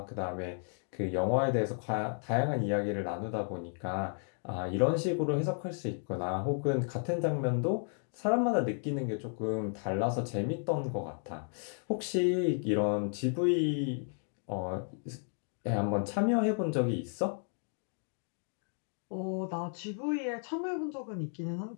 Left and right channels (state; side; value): silent; right; 56 dB below the other